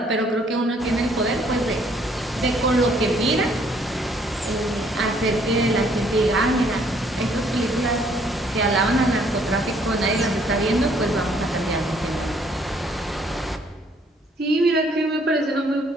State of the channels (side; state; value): both; normal; correlation 0.64